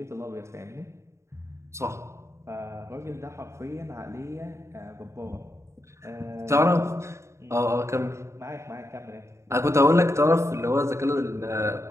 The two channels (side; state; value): left; late; 0.14 ms